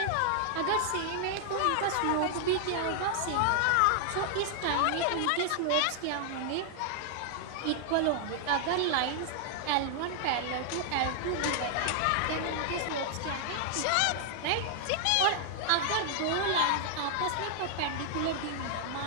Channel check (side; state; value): both; different; correlation 0.00